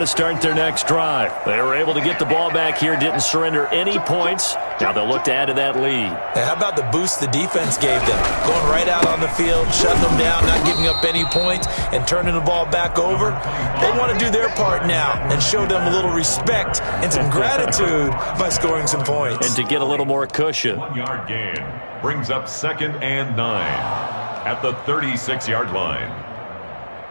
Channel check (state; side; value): inverted; both; correlation -1.00